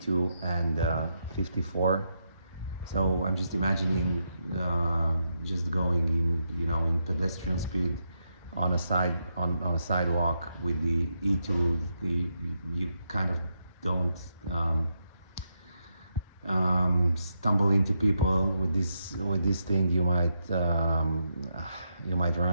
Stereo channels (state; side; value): inverted; both; correlation -0.82